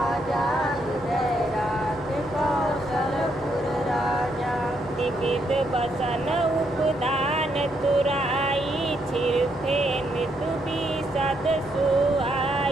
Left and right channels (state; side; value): normal; both; correlation 0.76